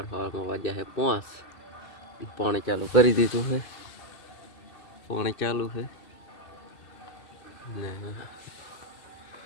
વાગ્યા છે 5. પાણી ચાલુ કરી દીધું છે. પાણી ચાલુ છે ને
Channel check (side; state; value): right; late; 2.6 ms